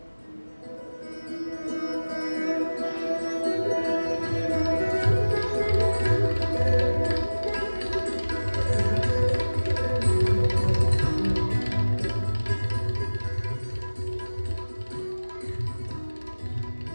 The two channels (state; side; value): inverted; both; correlation -1.00